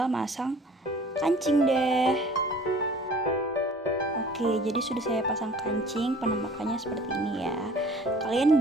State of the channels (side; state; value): both; normal; correlation 0.49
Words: masang kancing deh. Oke, jadi sudah saya pasang kancing, penampakannya seperti ini ya. Kalian